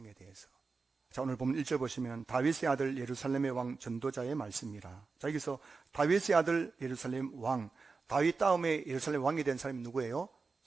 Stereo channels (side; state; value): left; quieter; 4.4 dB